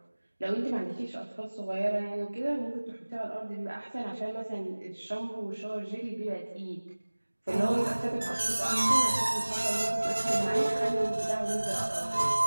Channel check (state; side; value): inverted; both; correlation -1.00